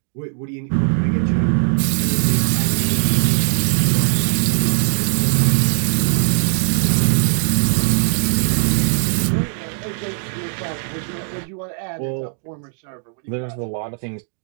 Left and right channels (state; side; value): silent; left; digital silence